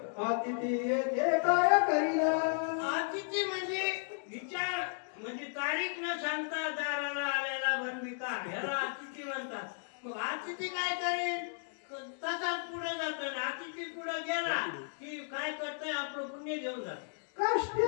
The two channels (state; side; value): silent; right; digital silence